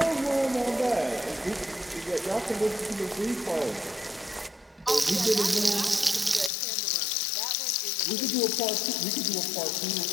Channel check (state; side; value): drops out; right; at 6.5 s